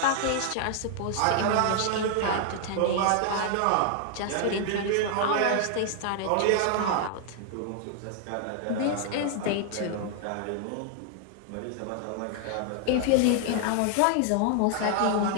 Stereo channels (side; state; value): both; different; correlation 0.00